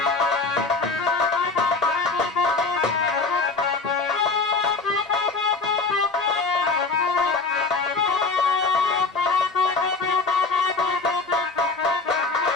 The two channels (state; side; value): quieter; right; 4.1 dB